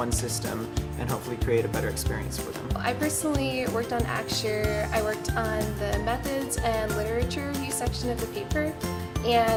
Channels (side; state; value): both; identical; correlation 1.00